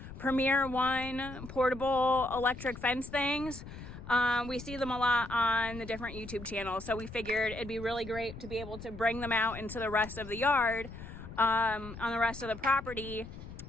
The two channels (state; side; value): noise; left; rumble, 12 dB below the sound